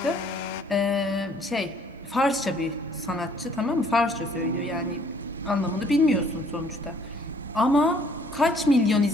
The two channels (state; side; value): normal; both; correlation 0.60